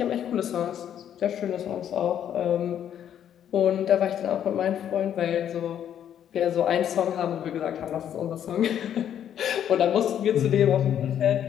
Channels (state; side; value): quieter; right; 9.8 dB